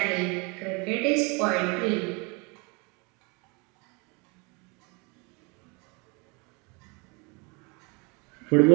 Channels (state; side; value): quieter; left; 29.9 dB